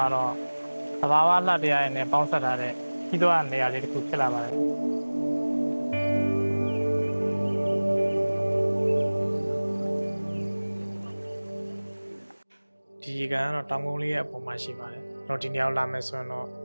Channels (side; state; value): both; inverted; correlation -1.00